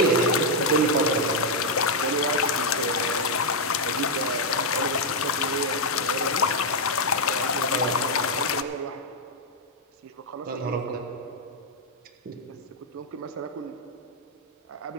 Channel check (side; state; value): both; normal; correlation -0.02